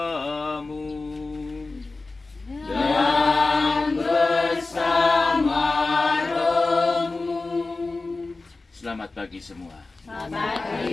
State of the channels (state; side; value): quieter; right; 3.5 dB